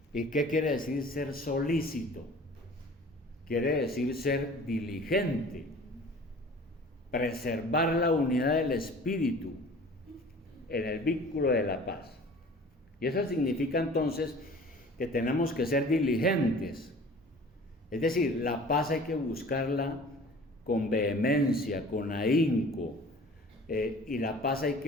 ¿Y qué quiere decir ser solícito? Quiere decir ser diligente, preservar la unidad del Espíritu en el vínculo de la paz. Y eso significa entonces que tenemos que ser diligentes. Es decir, la paz hay que buscarla con vehemencia, con ahínco, y la paz hay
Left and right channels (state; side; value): normal; both; correlation 0.46